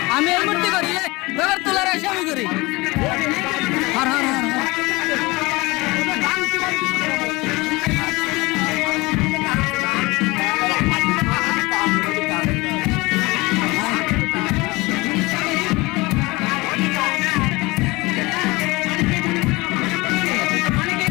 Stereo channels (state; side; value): quieter; right; 22.9 dB